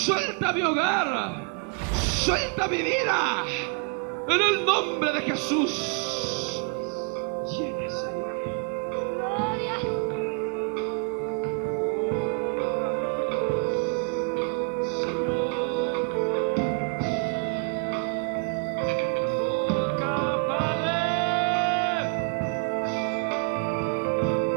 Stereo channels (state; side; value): quieter; left; 35.6 dB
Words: mi hogar, suelta mi vida, en el nombre de Jesús. Llénese.